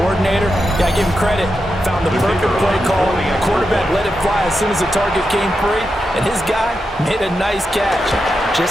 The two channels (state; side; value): normal; both; correlation 0.87